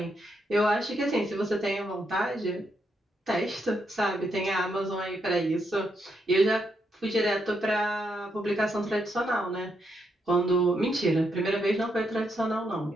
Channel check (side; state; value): both; normal; correlation 0.79